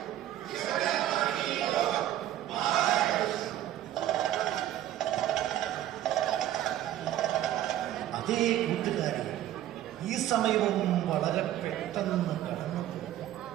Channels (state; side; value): quieter; left; 12.7 dB